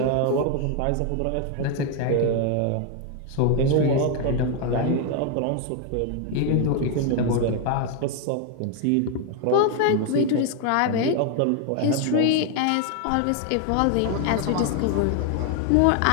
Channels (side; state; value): both; different; correlation 0.00